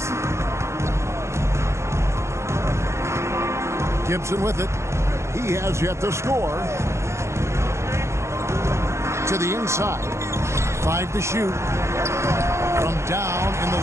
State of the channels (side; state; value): left; late; 0.13 ms